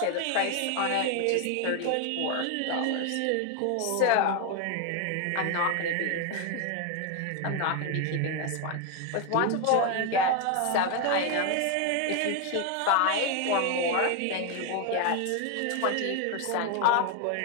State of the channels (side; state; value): both; different; correlation 0.01